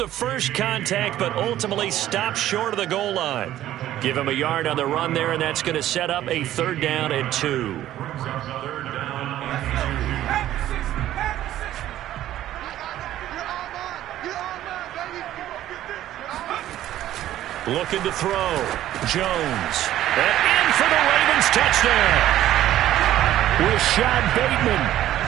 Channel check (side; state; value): left; quieter; 13.1 dB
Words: first contact, but ultimately stopped short of the goal line. Give him a yard on the run there, and that's going to set up a 3rd down and 2. Looking to throw. Jones. And in for the Ravens touchdown. Rashad Bateman